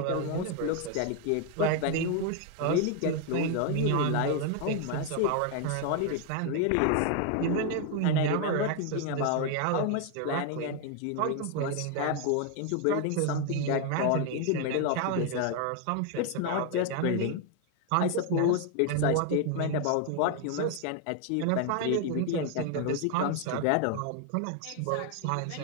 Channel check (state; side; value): different; both; correlation 0.00